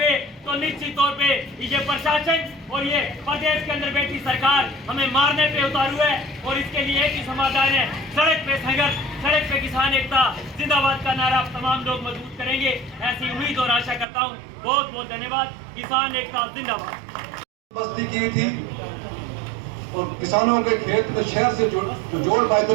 तो निश्चित तौर पे ये प्रशासन और ये प्रदेश के अंदर बैठी सरकार हमें मारने पे उतारू है और इसके लिए एक ही समाधान है, सड़क पे संघर्ष, सड़क पे किसान एकता जिंदाबाद का नारा तमाम लोग मजबूत करेंगे, ऐसी उम्मीद और आशा करता हूँ। बहुत बहुत धन्यवाद। किसान एकता जिंदाबाद। बस्ती की थी और किसानों के खेत में शहर से जोड़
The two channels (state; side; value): drops out; left; at 14.1 s